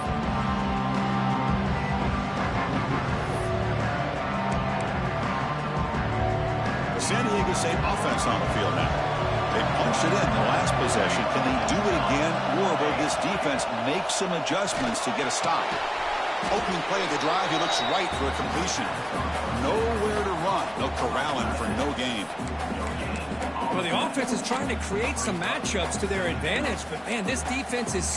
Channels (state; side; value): identical; both; correlation 1.00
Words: The San Diego State offense on the field now. They punched it in the last possession. Can they do it again, or will this defense make some adjustments to get a stop? Opening play of the drive, he looks right for a completion. Nowhere to run. They'll corral him for no gain. Well, the offense is trying to create some matchups to their advantage, but, man, this defense is